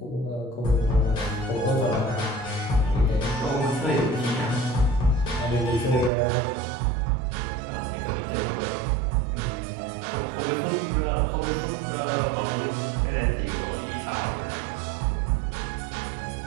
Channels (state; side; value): drops out; left; at 6.1 s